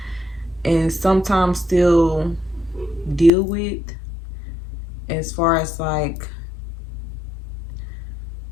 and sometimes still deal with, as far as like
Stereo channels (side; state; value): right; drops out; at 3.3 s